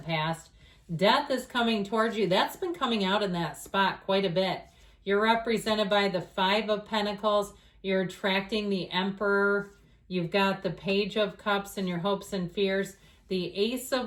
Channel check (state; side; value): identical; both; correlation 1.00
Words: past. Death is coming towards you. That's been coming out in that spot quite a bit. You're represented by the Five of Pentacles. You're attracting the Emperor. You've got the Page of Cups in your hopes and fears. The Ace of